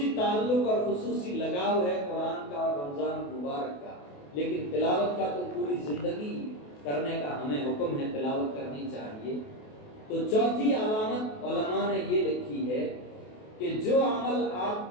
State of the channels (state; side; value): late; right; 28 ms